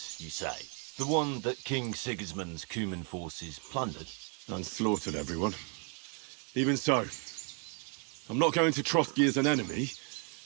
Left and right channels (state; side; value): quieter; left; 38.4 dB